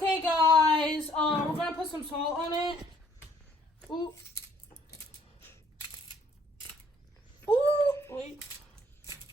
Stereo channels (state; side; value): normal; both; correlation 0.62